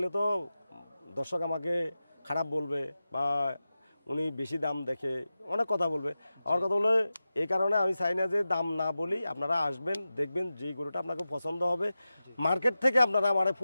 তো দর্শক আমাকে খারাপ বলবে, বা উনি বেশি দাম দেখে অনেক কথা বলবে। আমার কথা হলো এই কারণে আমি চাই না যে দাম না বলি, আপনারা আসবেন, দেখবেন যেই গরুটা আপনাকে পছন্দ হবে মার্কেট থেকে আপনারা আমার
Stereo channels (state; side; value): inverted; both; correlation -0.93